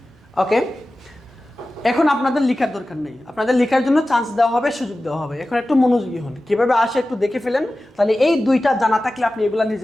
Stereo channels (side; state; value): both; normal; correlation 0.95